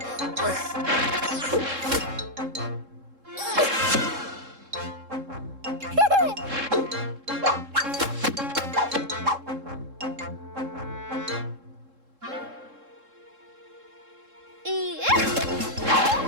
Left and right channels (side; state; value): left; late; 3.7 ms